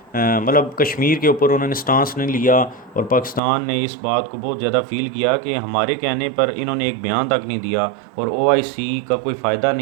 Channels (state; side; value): drops out; left; at 3.4 s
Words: मतलब कश्मीर के ऊपर उन्होंने स्टांस नहीं लिया और पाकिस्तान ने इस बात को बहुत ज़्यादा फ़ील किया कि हमारे कहने पर इन्होंने एक बयान तक नहीं दिया और OIC का कोई फ़ायदा